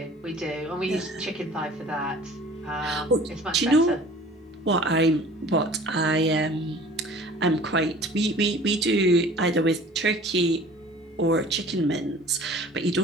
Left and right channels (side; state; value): both; normal; correlation 0.47